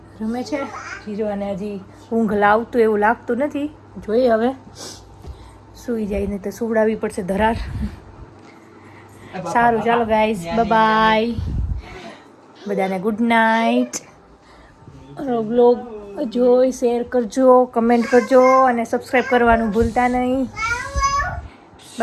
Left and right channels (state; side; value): identical; both; correlation 1.00